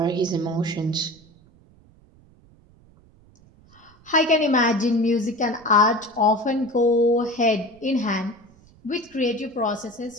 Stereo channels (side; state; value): right; noise; rumble, 28 dB below the sound